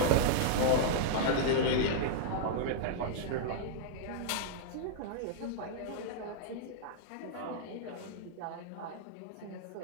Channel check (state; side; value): different; both; correlation -0.02